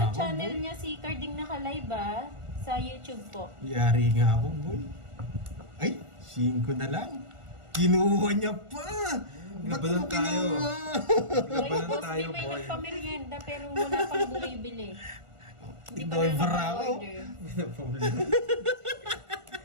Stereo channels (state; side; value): late; left; 1.4 ms